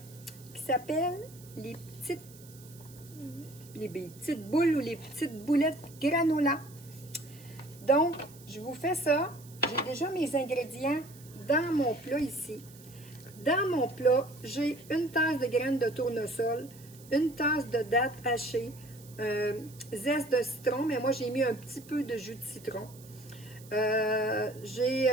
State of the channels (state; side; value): noise; right; hiss, 22 dB below the sound